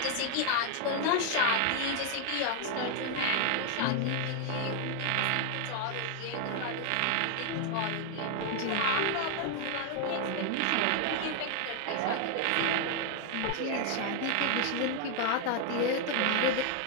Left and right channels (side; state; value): both; different; correlation 0.00